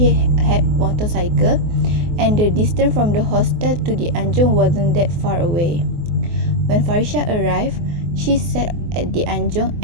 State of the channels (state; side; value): late; left; 24 ms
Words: had motorcycle and the distance from the hostel to the anjung wasn't that far away. When Farisha arrived, she sat at the anjung